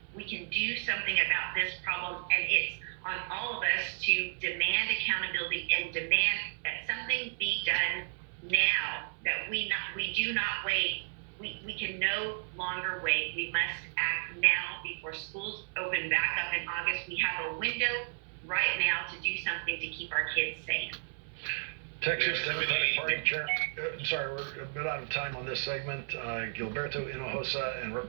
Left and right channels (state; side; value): silent; left; 56 dB below the other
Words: We can do something about this problem, and it's on all of us to demand accountability and demand that something be done now, that we do not wait. We can no longer wait. We must act now before schools open back up in August. We have a window right now to do something to keep our kids safe. Texas Democratic Party Chair. Sorry, we're a bit out of time on this segment. Gilberto Hinojosa and